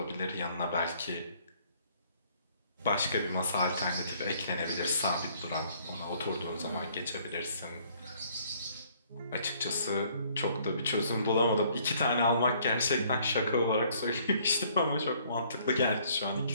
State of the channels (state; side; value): inverted; both; correlation -0.62